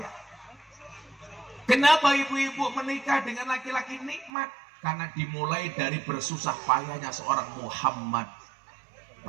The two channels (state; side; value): drops out; left; at 4.3 s